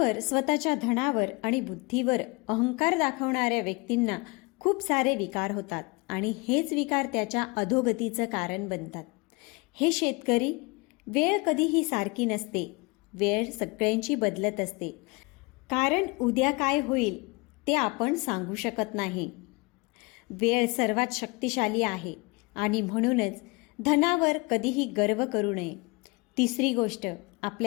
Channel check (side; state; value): right; quieter; 27.2 dB